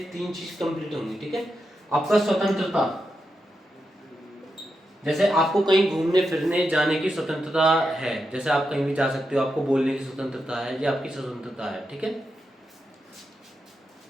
3 चीज कंप्लीट होंगी, ठीक है। आपका स्वतंत्रता, जैसे आपको कहीं घूमने फिरने जाने की स्वतंत्रता है, जैसे आप कहीं भी जा सकते हो, आपको बोलने की स्वतंत्रता है, ये आपकी स्वतंत्रता है, ठीक है।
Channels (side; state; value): both; normal; correlation 0.86